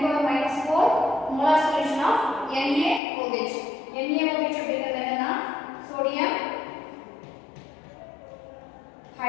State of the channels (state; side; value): drops out; right; at 3.0 s